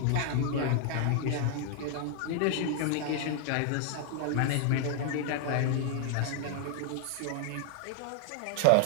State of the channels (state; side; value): different; both; correlation 0.00